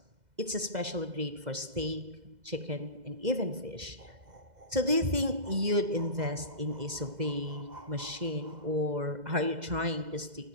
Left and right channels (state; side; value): late; left; 2.0 ms